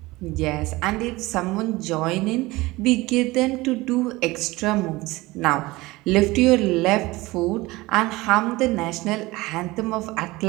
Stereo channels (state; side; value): quieter; left; 20.7 dB